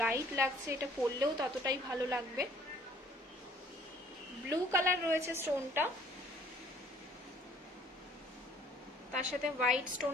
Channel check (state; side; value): normal; both; correlation 0.57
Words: লাগছে, এটা পরলেও ততটাই ভালো লাগবে। ব্লু কালার রয়েছে স্টোনটা, তার সাথে হোয়াইট